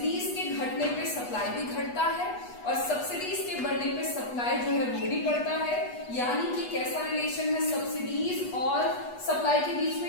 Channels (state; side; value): late; right; 8.2 ms